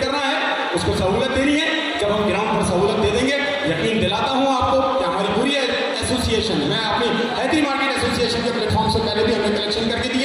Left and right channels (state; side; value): identical; both; correlation 1.00